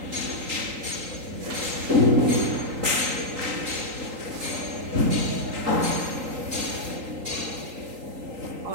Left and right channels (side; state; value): left; late; 3.8 ms